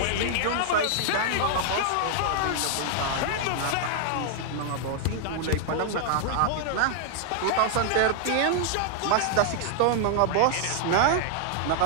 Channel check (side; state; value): both; different; correlation 0.00